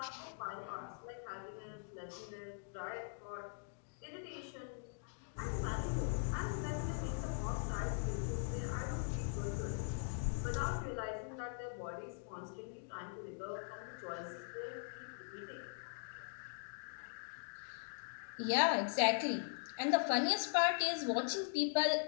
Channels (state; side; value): silent; right; digital silence